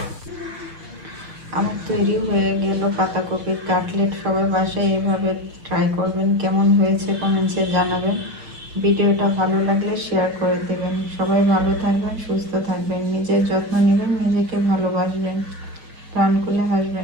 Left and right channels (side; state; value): left; late; 6.3 ms